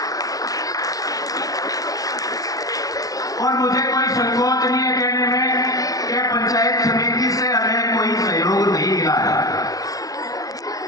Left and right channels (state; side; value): late; right; 0.17 ms